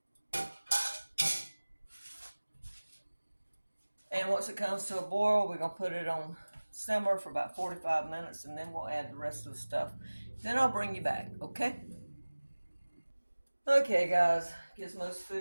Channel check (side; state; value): both; inverted; correlation -1.00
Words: And once it comes to a boil, we're going to put it on simmer for about 45 minutes, and then we'll add the rest of the stuff. Then I'll bring you back, okay? Okay, guys, Gizmo's